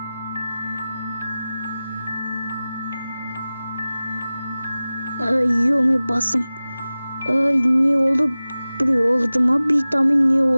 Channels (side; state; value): both; inverted; correlation -0.97